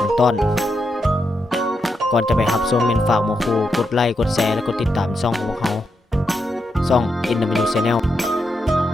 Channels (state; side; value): normal; both; correlation 0.84